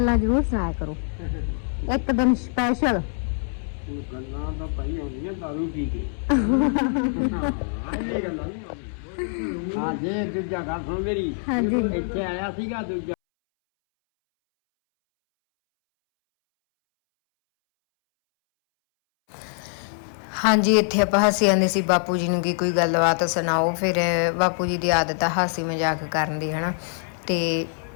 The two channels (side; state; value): right; silent; 62 dB below the other